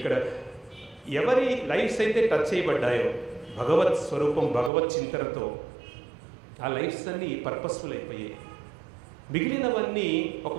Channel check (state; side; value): drops out; left; at 4.7 s